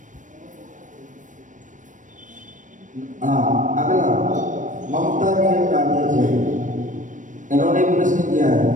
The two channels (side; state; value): left; late; 0.37 ms